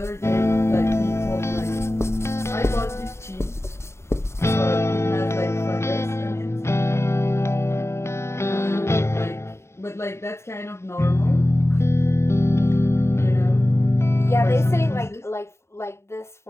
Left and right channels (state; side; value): late; right; 0.13 ms